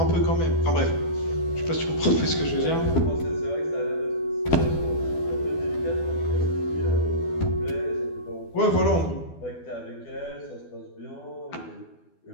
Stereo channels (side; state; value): right; late; 12 ms